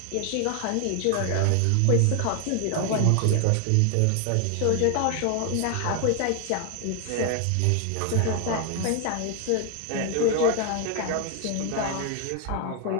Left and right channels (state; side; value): different; both; correlation 0.00